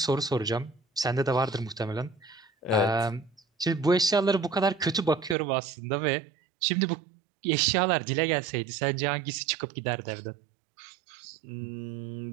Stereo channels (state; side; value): drops out; left; at 5.4 s